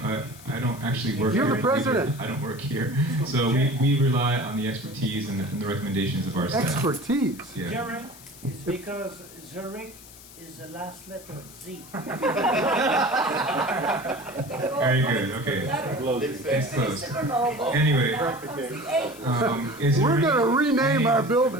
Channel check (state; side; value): noise; left; hiss, 19 dB below the sound